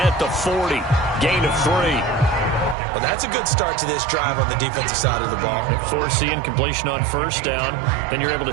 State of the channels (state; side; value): drops out; left; at 2.8 s